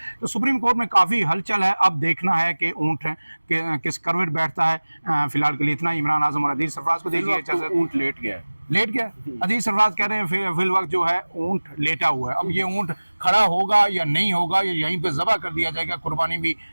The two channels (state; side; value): inverted; both; correlation -1.00